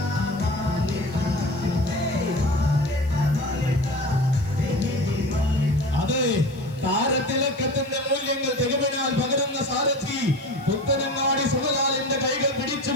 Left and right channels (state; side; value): noise; left; hiss, 27 dB below the sound